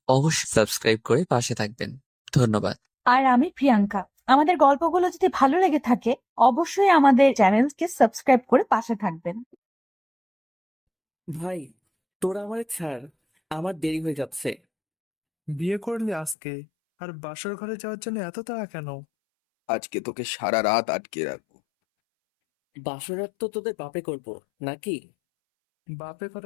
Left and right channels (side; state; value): right; drops out; at 16.4 s